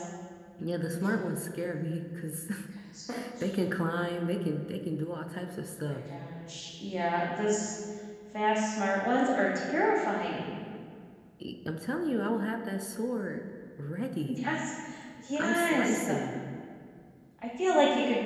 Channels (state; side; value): identical; both; correlation 1.00